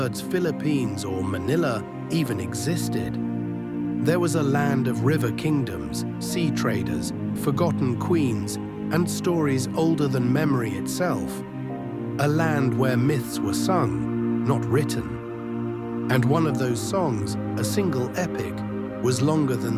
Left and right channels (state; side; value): identical; both; correlation 1.00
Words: Philippines or Manila even existed, there was a land of river kingdoms, sea traders, forgotten queens, and stories older than memory itself. A land where myths were sung, not written. And one of those songs, a single epic, was longer than